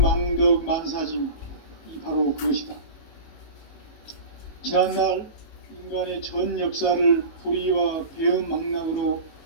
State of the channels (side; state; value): right; late; 18 ms